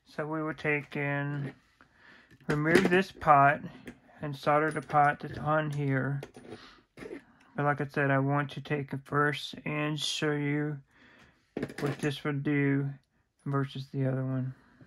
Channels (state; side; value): identical; both; correlation 1.00